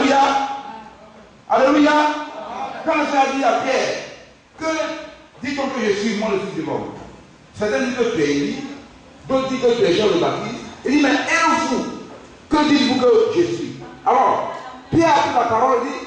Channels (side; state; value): both; identical; correlation 1.00